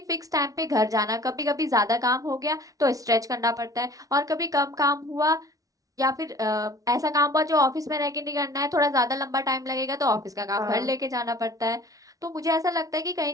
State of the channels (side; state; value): left; late; 0.17 ms